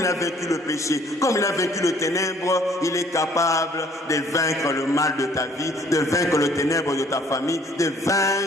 a vaincu le péché, comme il a vaincu le ténèbre, il est capable de vaincre le mal de ta vie, de vaincre le ténèbre de ta famille, de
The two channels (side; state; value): both; normal; correlation 0.59